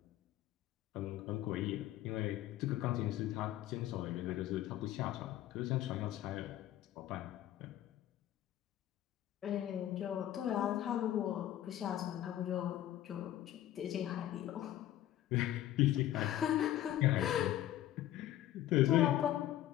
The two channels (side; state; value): right; quieter; 13.1 dB